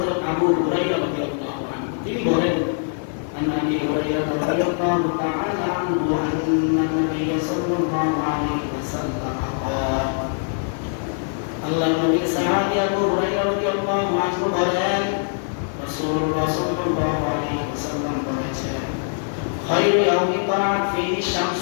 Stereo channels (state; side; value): silent; right; 64 dB below the other